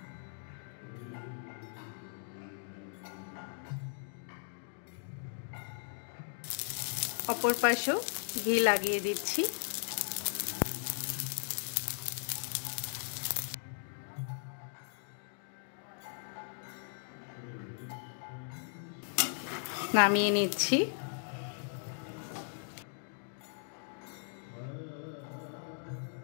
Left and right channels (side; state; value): right; silent; digital silence